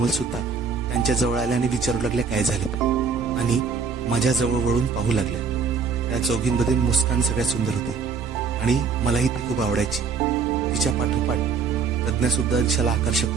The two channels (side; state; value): left; quieter; 5.4 dB